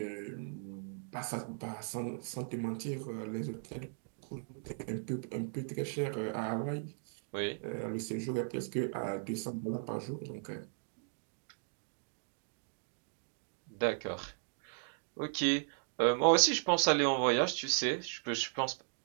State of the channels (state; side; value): silent; left; digital silence